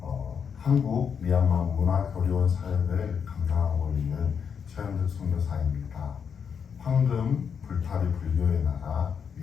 한국 미얀마 문화교류원 사역을 감당하고 있는 최은득 선교사입니다. 황금 불타리 불교의 나라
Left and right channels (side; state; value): right; quieter; 6.9 dB